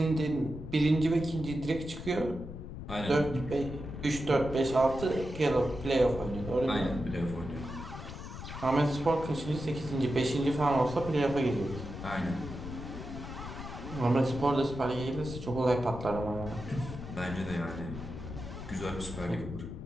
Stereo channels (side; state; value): left; noise; rumble, 9 dB below the sound